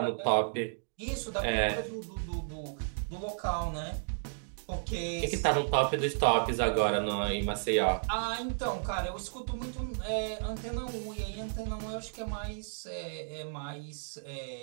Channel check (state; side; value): silent; left; digital silence